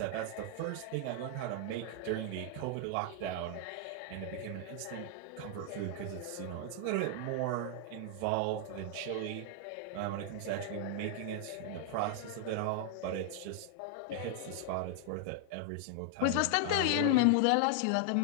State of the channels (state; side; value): different; both; correlation 0.00